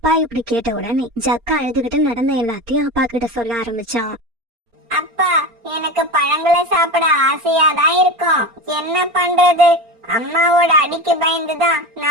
இப்படி கேட்ட உடனே ஜக்கா அழுதுகிட்டு நடந்த எல்லாத்தையும் அப்பா கிட்ட சொல்ல ஆரம்பிச்சான். அப்பா, எனக்கு பழங்களை சாப்பிட ஆசையாதான் இருக்கும். என்ன பண்றது? அம்மாவோட அடிக்கு பயந்துதான்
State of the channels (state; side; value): late; left; 4.3 ms